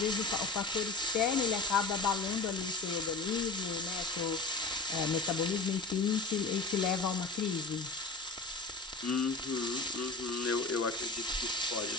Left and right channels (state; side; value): quieter; right; 3.7 dB